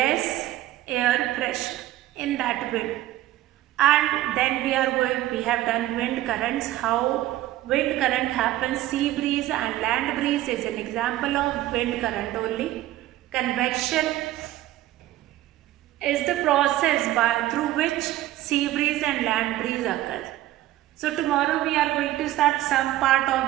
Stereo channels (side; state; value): left; quieter; 14.9 dB